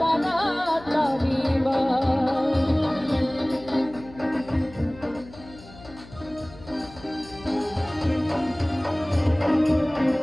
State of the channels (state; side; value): noise; left; hum, 19 dB below the sound